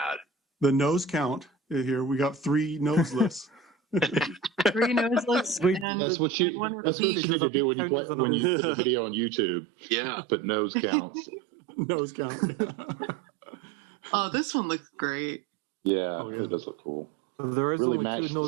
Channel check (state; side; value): drops out; left; at 5.9 s